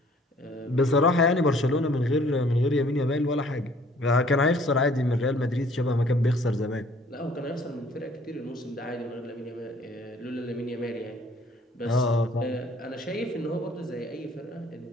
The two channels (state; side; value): normal; both; correlation 0.57